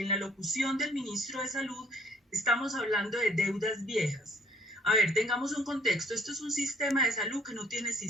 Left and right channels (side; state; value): both; normal; correlation 0.61